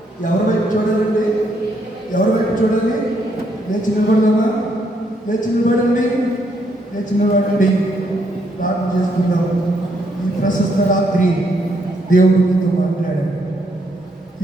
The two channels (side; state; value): both; normal; correlation 0.74